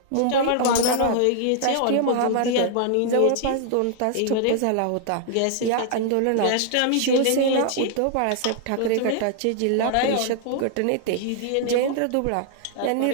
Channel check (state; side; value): different; both; correlation -0.01